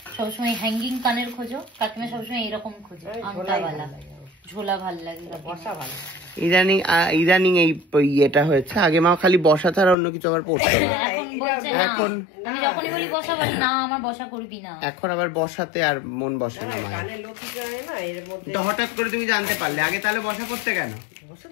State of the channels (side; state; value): right; drops out; at 10.0 s